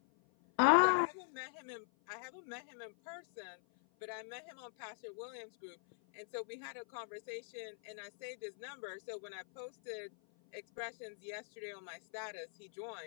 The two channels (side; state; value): right; silent; 50 dB below the other